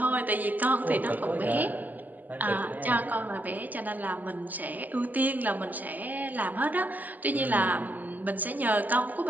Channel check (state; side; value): late; left; 0.082 ms